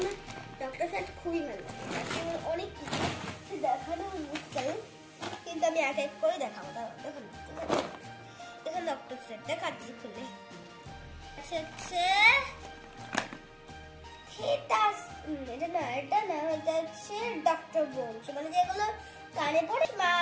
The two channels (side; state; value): both; identical; correlation 1.00